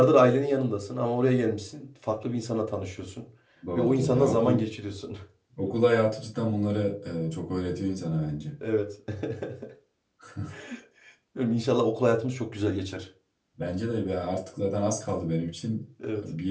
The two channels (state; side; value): identical; both; correlation 1.00